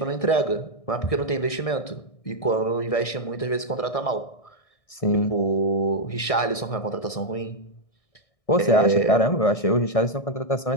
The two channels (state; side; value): late; right; 1.6 ms